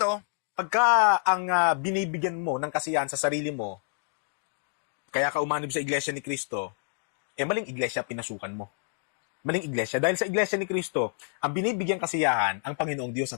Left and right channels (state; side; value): silent; right; digital silence